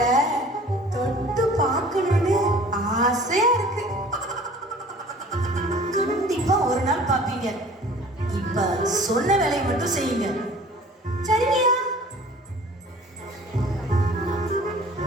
தொட்டு பார்க்கணும்னு ஆசையா இருக்கு. கண்டிப்பா ஒரு நாள் பாப்பீங்க. இப்ப சொன்ன வேலையை மட்டும் செய்யுங்க. சரியா?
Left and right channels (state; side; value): normal; both; correlation 0.48